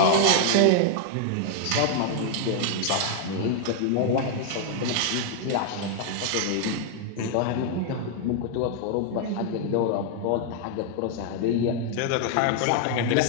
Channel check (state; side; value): different; both; correlation 0.00